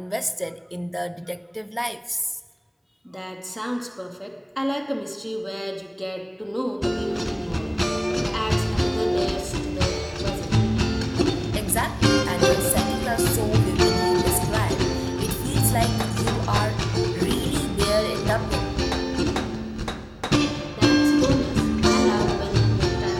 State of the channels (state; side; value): identical; both; correlation 1.00